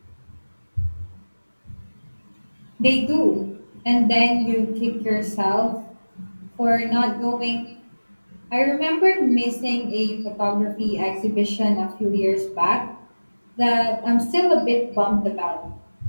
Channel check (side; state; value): both; inverted; correlation -1.00